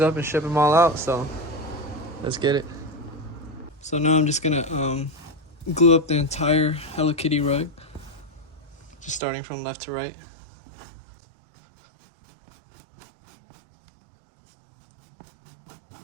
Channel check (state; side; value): drops out; left; at 9.2 s